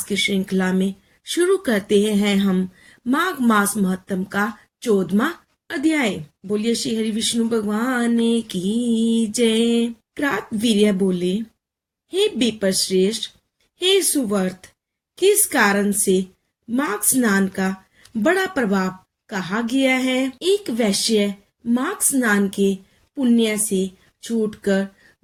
की श्रृंखला में शुरू करते हैं हम माघ मास महत्तम का 14वां अध्याय। बोलिए श्री हरि विष्णु भगवान की जय। क्रातवीर्य बोले, हे विपर श्रेष्ठ, हे सुवर्त, किस कारण से माघ स्नान का बड़ा प्रभाव कहा गया है? एक वैश्य माघ स्नान के पुण्य से छूटकर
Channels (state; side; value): identical; both; correlation 1.00